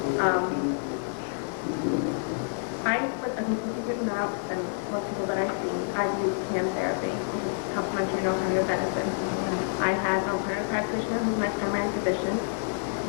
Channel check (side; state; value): right; silent; digital silence